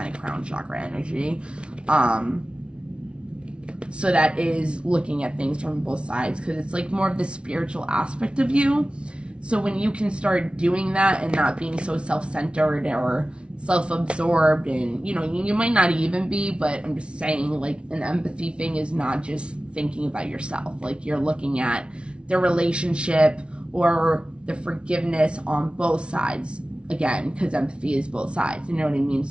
of crown chakra energy, so that is looking at things from both sides, because it's like more of the spiritual aspect of you. So when you can start doing that and not being so self-centered or self-absorbed, and you might not even be, but I'm just saying, like, an empathy thing is not just thinking about yourself. Like, you're looking at the relationship or the forgiveness on both sides, again, because empathy is both sides, you know what I mean?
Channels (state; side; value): late; left; 0.058 ms